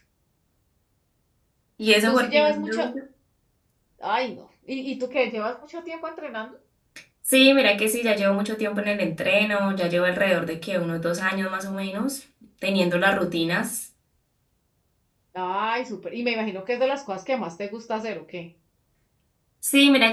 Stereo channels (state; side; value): identical; both; correlation 1.00